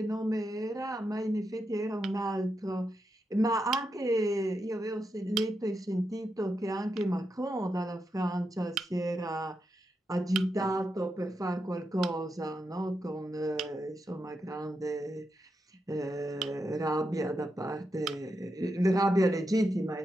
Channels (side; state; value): both; normal; correlation 0.86